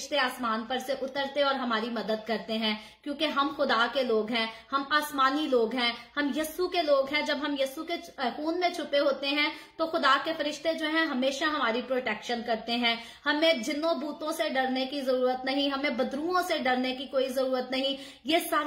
आसमान पर से उतरते और हमारी मदद करते हैं, क्योंकि हम खुदा के लोग हैं, हम आसमानी लोग हैं, हम यस्सु के लोग हैं। जब हम यस्सु के खून में छुपे होते हैं तो खुदा के फरिश्ते जो हैं हमेशा हमारी प्रोटेक्शन करते हैं। हमें जिन्नों भूतों से डरने की जरूरत नहीं, हमें बदरुओं से डरने की कोई जरूरत नहीं। ये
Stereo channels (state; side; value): identical; both; correlation 1.00